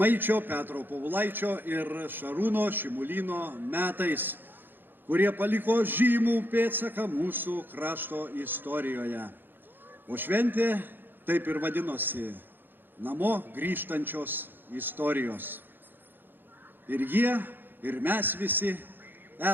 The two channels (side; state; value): left; late; 0.096 ms